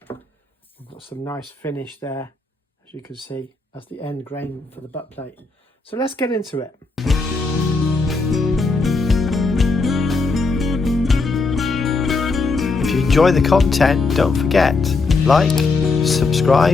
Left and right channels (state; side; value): quieter; right; 3.9 dB